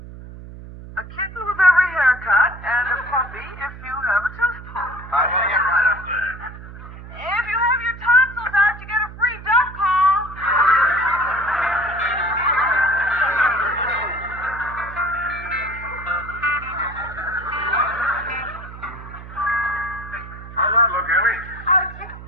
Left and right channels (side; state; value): right; noise; hum, 14 dB below the sound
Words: A kitten with every haircut and a puppy if you have a telephone. I'm going to get right up there. If you have your tonsils out, you get a free duck call. How's that look, Ellie? Oh, just